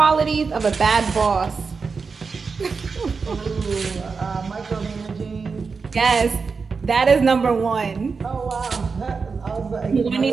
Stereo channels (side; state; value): left; quieter; 4.9 dB